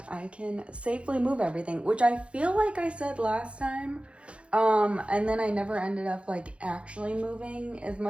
I can safely move everything, which I feel like I said last time. And then I never ended up like actually moving as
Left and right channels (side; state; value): left; late; 0.060 ms